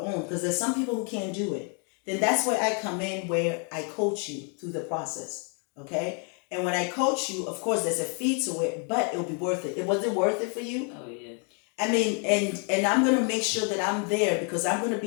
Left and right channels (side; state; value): right; quieter; 38.9 dB